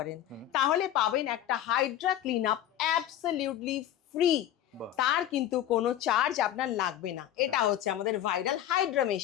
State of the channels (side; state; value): right; quieter; 11.8 dB